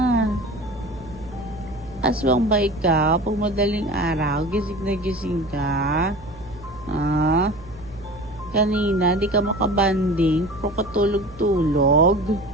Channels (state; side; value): noise; right; hum, 20 dB below the sound